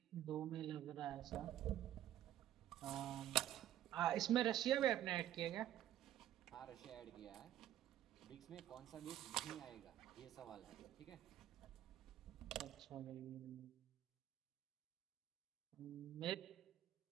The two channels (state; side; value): quieter; left; 12.2 dB